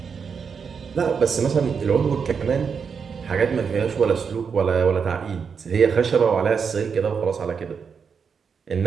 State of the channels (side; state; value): left; quieter; 6.2 dB